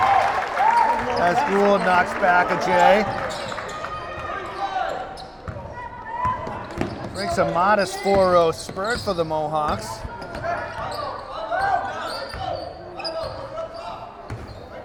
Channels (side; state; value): both; identical; correlation 1.00